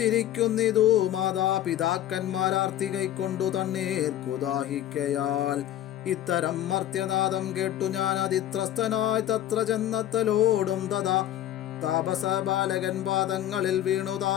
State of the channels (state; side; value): quieter; right; 12.2 dB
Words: മാതാപിതാക്കന്മാരാർത്തി കൈക്കൊണ്ടു തണ്ണീർക്കു ദാഹിക്കയാൽ. ഇത്തരം മർത്യനാദം കേട്ടു ഞാൻ അതിത്രസ്തനായി തത്ര ചെന്നത്തലോടും തഥാ താപസ ബാലകൻ പാദങ്ങളിൽ വീണു